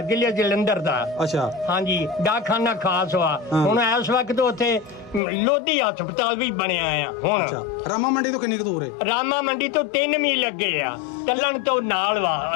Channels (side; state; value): right; drops out; at 5.2 s